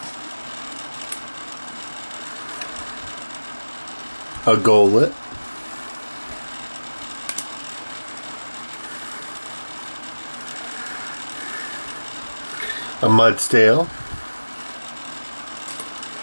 a Golett, a Mudstale,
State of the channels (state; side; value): inverted; both; correlation -1.00